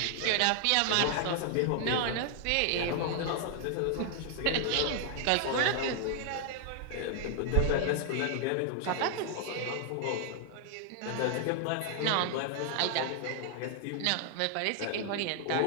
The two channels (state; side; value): different; both; correlation 0.00